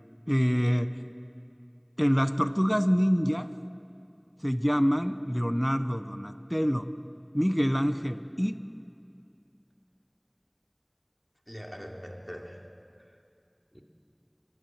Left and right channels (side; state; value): both; identical; correlation 1.00